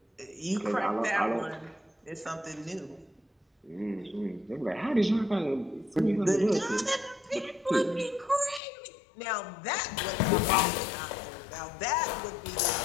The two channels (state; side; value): drops out; right; at 8.6 s